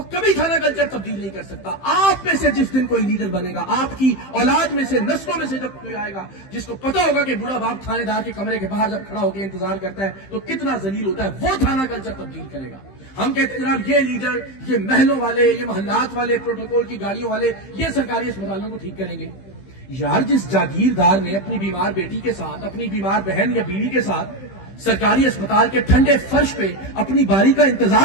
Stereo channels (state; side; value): late; right; 15 ms